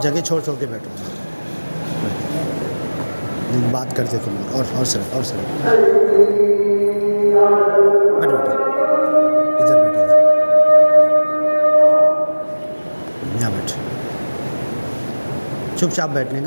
جگہ چھوڑ کے بیٹھو، بات کرتے تم اور سر بیٹھو ادھر یہاں بیٹھ، چپ چاپ بیٹھنے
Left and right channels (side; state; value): both; inverted; correlation -1.00